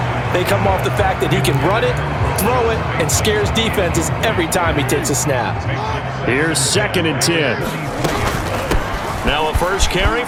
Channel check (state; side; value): identical; both; correlation 1.00